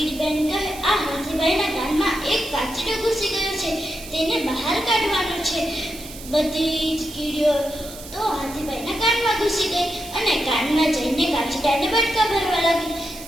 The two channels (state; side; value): noise; right; hiss, 15 dB below the sound